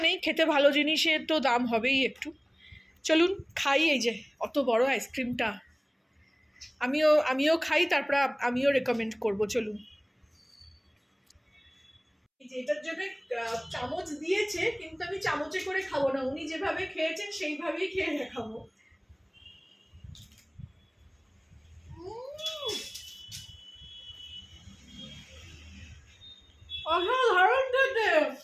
নেই, খেতে ভালো জিনিসের তো দাম হবেই একটু। চলুন খাই। এই যে অত বড় আইসক্রিমটা, আমিও খাই, তারপর আমিও রেকমেন্ড করব। চলুন। এই যে এটার জন্য চামচ দিয়েছে, কিন্তু আমি চামচে করে খাবো না, উনি যেভাবে খেয়েছেন সেইভাবেই খেয়ে দেখাবো। অসাধারণ খেতে।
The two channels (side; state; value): both; identical; correlation 1.00